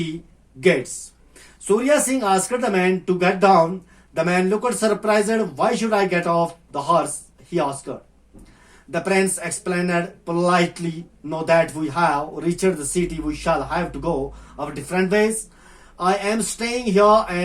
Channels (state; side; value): identical; both; correlation 1.00